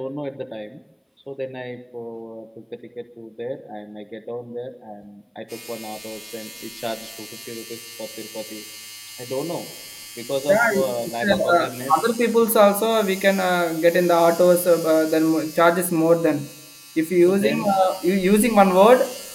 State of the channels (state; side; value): identical; both; correlation 1.00